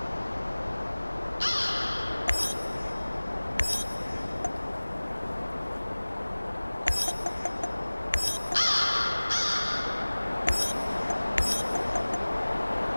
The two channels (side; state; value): both; inverted; correlation -1.00